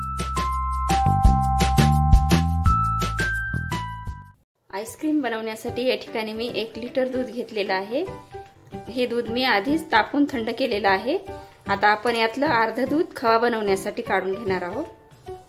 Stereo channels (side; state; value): both; identical; correlation 1.00